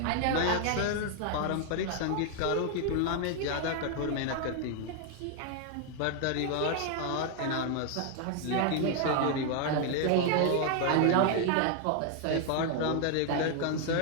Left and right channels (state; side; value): different; both; correlation 0.00